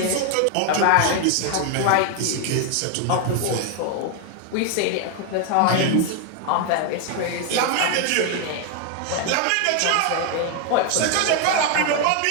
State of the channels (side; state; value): both; different; correlation 0.01